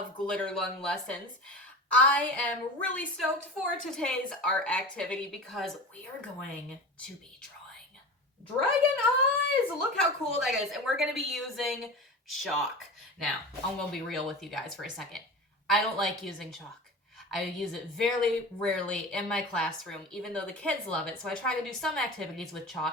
Glitter Lung Lessons. I am really stoked for today's art activity because we are going to be drawing dragon eyes. Look how cool that is. And we're going to be using chalk. Now, I'm going to be real with you guys for a second. I don't like using chalk. I use it very rarely in my classroom, even though the kids love it, so I try to do some activities with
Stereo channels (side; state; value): both; normal; correlation 0.31